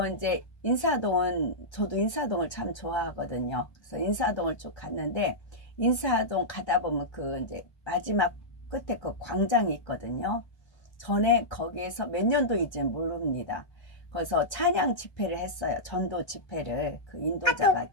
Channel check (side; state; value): right; late; 1.3 ms